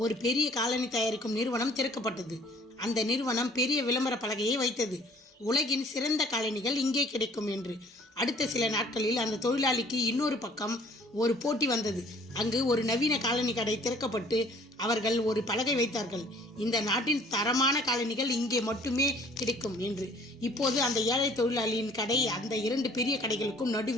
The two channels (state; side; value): normal; both; correlation 0.55